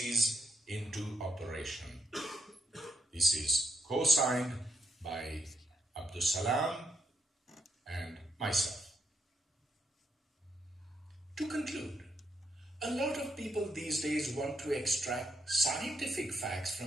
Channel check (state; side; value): normal; both; correlation 0.77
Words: into operation." This is co-signed by Abdus Salam and myself. To conclude, a lot of people these days want to extract scientific facts